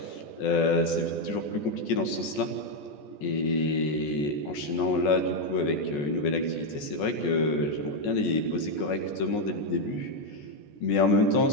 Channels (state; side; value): late; right; 14 ms